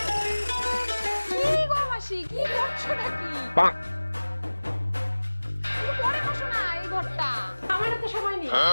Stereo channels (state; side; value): inverted; both; correlation -1.00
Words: কি গো মাসি, কি করছো নাকি? তুমি পরে বসো না এই ঘরটা, আমার তো সময় নেই।